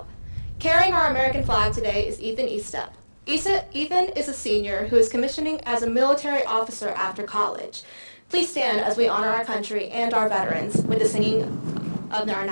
Carrying our American flag today is Ethan Eastep. Ethan is a senior who is commissioning as a military officer after college. Please stand as we honor our country and our veterans with the singing of our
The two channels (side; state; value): both; inverted; correlation -1.00